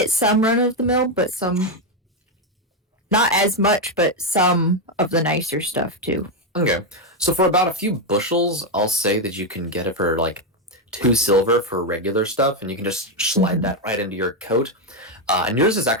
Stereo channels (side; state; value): both; normal; correlation 0.05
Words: some run of the mill, but some. Not as much, but some of the nicer stuff too. Okay. So for about a few bushels, I'll say that you can get it for like 2 silver for regular stuff, and you can just slide that right into your coat. And yours is